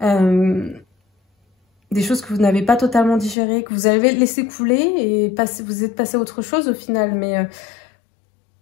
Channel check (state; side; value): drops out; right; at 3.4 s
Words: Des choses que vous n'avez pas totalement digérées, que vous avez laissé couler et vous êtes passé à autre chose au final.